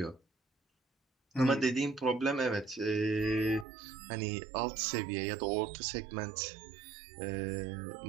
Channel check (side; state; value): left; drops out; at 3.7 s